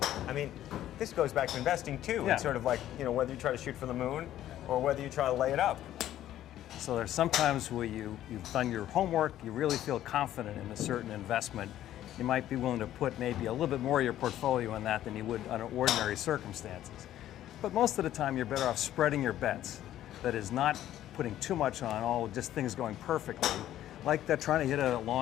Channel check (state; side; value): quieter; right; 12.6 dB